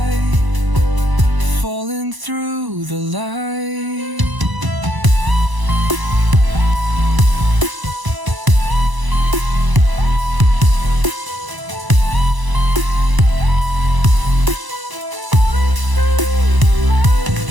falling through the light.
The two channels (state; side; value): late; left; 1.0 ms